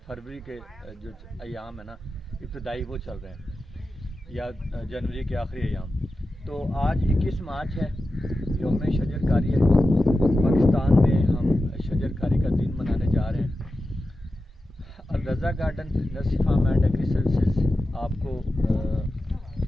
फरवरी के जो अयाम है ना, इब्तदाई वो चल रहे हैं या जनवरी के आखिरी अयाम। तो आज 21 मार्च है, यौम शजरकारी है। पाकिस्तान में हम शजरकारी का दिन मनाने जा रहे हैं। Raza garden nursery farm and agri services आपको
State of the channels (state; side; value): normal; both; correlation 0.92